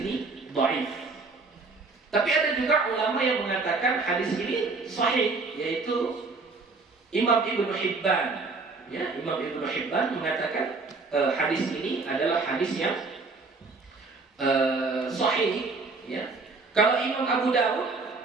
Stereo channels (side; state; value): left; quieter; 3.9 dB